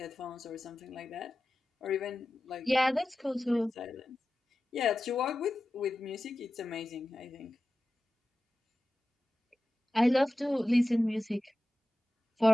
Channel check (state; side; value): normal; both; correlation 0.94